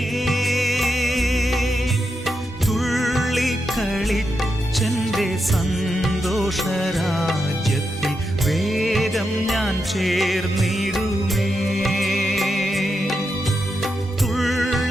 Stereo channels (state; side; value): normal; both; correlation 0.85